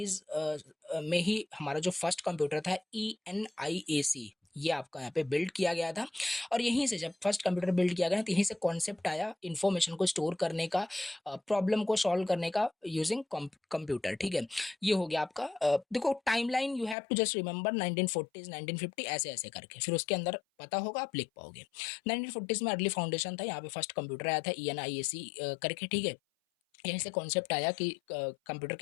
में ही हमारा जो फर्स्ट कंप्यूटर था ENIAC, ये आपका यहाँ पे बिल्ड किया गया था। और यहीं से जब फर्स्ट कंप्यूटर बिल्ड किया गया तो यहीं से कॉन्सेप्ट आया इन्फॉर्मेशन को स्टोर करने का, प्रॉब्लम को सॉल्व करने का यूजिंग कंप्यूटर, ठीक है। ये हो गया आपका देखो timeline, you have to just remember 1940s 1950 ऐसे ऐसे करके, फिर उसके अंदर पता होगा आप लिख पाओगे। 1940s में अर्ली फाउंडेशन था, यहाँ पे फर्स्ट कंप्यूटर आया था ENIAC करके, ठीक है। यहीं से कॉन्सेप्ट आया कि कंप्यूटर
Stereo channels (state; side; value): drops out; right; at 16.9 s